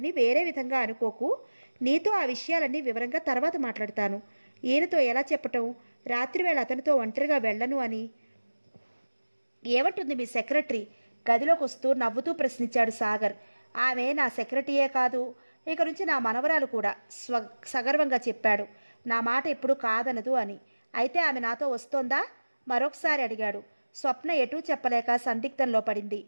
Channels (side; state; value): both; inverted; correlation -1.00